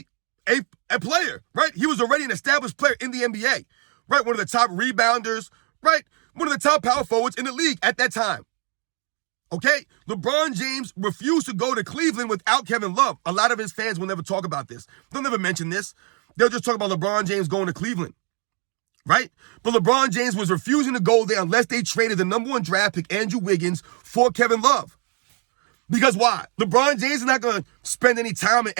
a player, right? He was already an established player in the NBA, right? One of the top rebounders, right? One of the top power forwards in the league at that time. Okay? LeBron James refused to go to Cleveland without Kevin Love. A lot of his fans will never talk about this. They'll never mention this. They'll just talk about LeBron James going to Cleveland, right? But LeBron James was refusing to go there unless they traded the #1 draft pick, Andrew Wiggins, for Kevin Love. Because why? LeBron James is not going to spend any time and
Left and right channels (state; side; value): quieter; left; 38.7 dB